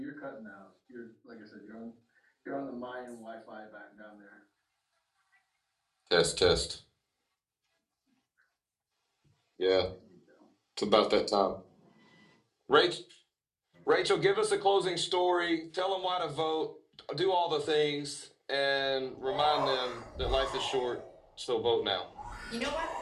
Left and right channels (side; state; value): both; identical; correlation 1.00